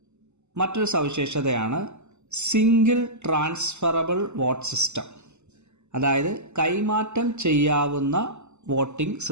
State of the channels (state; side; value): late; left; 0.83 ms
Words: മറ്റൊരു സവിശേഷതയാണ് സിംഗിൾ ട്രാൻസ്ഫറബിൾ വോട്ട് സിസ്റ്റം, അതായത് കൈമാറ്റം ചെയ്യാവുന്ന വോട്ടിംഗ്